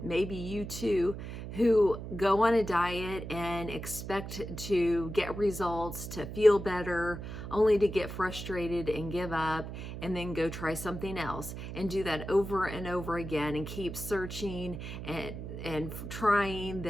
maybe you too, who go on a diet and expect to get results, to feel better, only to get frustrated and give up, and then go try something else and do that over and over again and keep searching and trying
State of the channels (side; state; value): right; noise; hum, 8 dB below the sound